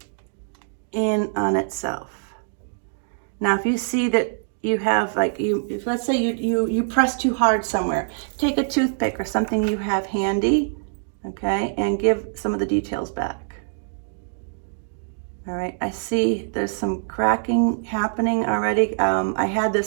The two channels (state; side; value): silent; left; digital silence